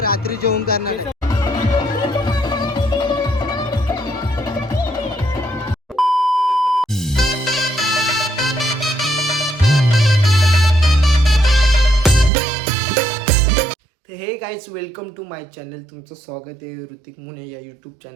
रात्री जेवण करणार आहे. तर hey guys, welcome to my channel. तुमचं स्वागत आहे ऋतिक मुने या यूट्यूब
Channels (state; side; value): drops out; left; at 12.3 s